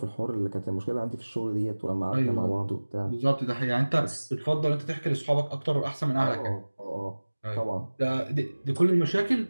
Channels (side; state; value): both; inverted; correlation -1.00